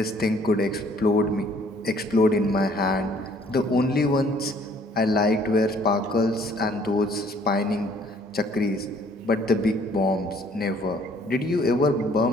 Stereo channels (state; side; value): normal; both; correlation 0.59